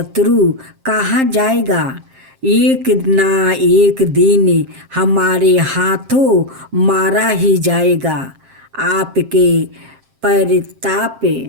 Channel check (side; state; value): left; late; 7.6 ms